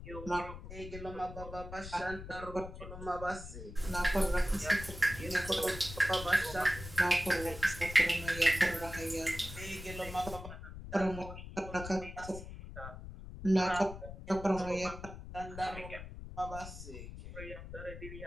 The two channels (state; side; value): noise; left; rumble, 11 dB below the sound